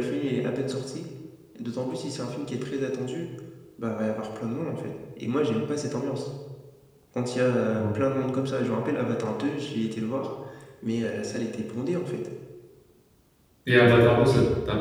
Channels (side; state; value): both; identical; correlation 1.00